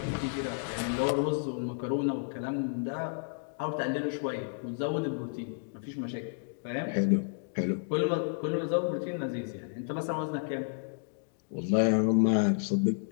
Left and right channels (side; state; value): right; silent; digital silence